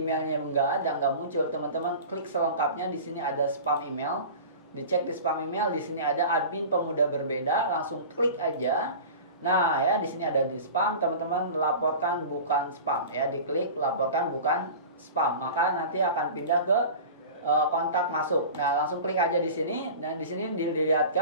nggak muncul, teman-teman klik selengkapnya. Di sini ada spam email. Dicek di spam email, di sini ada admin Pemuda Berbeda, langsung klik aja. Nah ya, di sini ada di spam, teman-teman laporkan bukan spam ya, diklik laporkan bukan spam, maka nanti akan pindah ke kontak masuk. Nah, langsung klik aja di sini. Dan di sini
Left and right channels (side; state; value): both; inverted; correlation -0.36